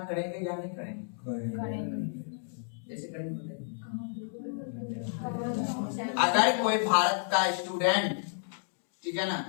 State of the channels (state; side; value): silent; right; digital silence